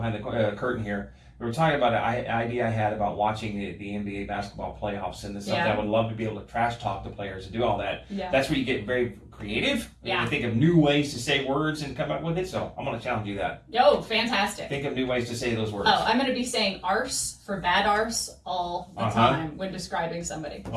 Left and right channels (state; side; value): identical; both; correlation 1.00